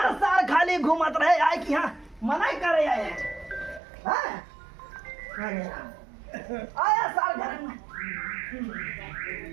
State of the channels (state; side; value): drops out; left; at 3.8 s